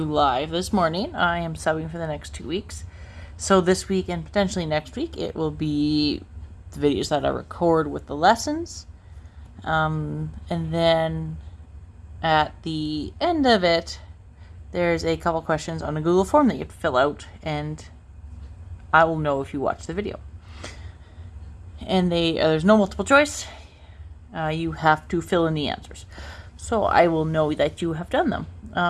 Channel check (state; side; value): identical; both; correlation 1.00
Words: live this morning. I am subbing for the next 2 weeks. So this week and potentially next week, it will be the videos that I record with the lessons. And then at the end of it, there's a couple questions on a Google form that you have to fill out, and I will know if you watch the video. And there's no multiple choice. You have to fill in the answers. So I will know that you have done them.